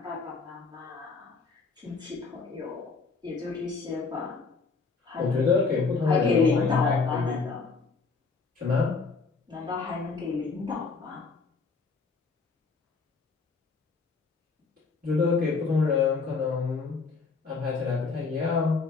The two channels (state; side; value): quieter; right; 4.5 dB